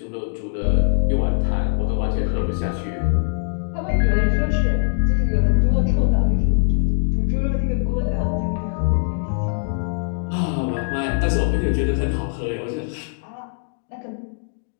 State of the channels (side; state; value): right; silent; digital silence